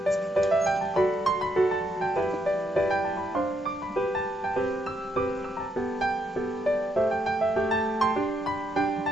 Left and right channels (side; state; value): both; normal; correlation 0.76